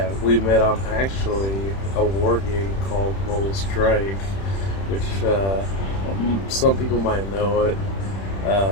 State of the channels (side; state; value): right; late; 31 ms